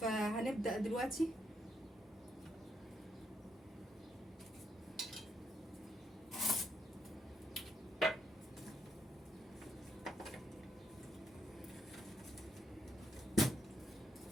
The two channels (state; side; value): normal; both; correlation 0.78